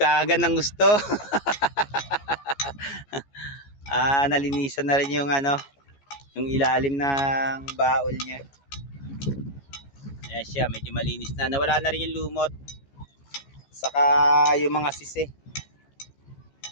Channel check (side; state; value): right; late; 14 ms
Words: ng gusto. Nalinisan na rin yung ano, yung ilalim ng baol niya. Ayan siya, medyo malinis na. Nawala na rin yung lumot. Saka yung mga sisi.